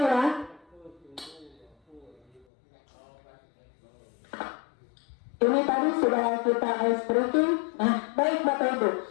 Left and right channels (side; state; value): right; drops out; at 2.5 s